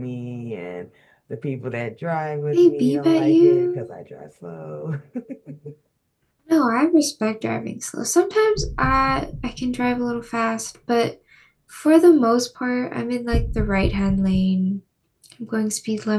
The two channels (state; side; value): identical; both; correlation 1.00